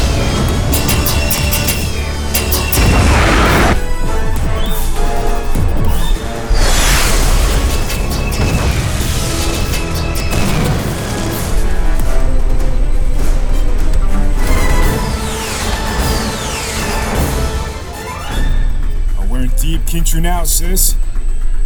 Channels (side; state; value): both; identical; correlation 1.00